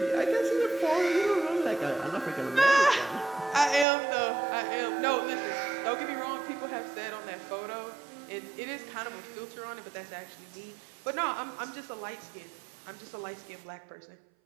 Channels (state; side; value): drops out; left; at 3.9 s